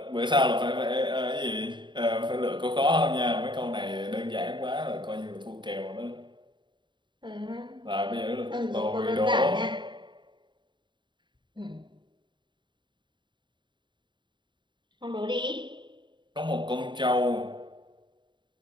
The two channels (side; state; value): left; late; 0.23 ms